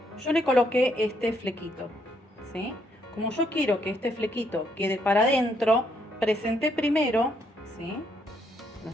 yo le coloqué este flequito, ¿sí? Como yo quiero que este flequito quede para adentro, presenté primero, ¿sí?,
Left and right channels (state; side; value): normal; both; correlation 0.73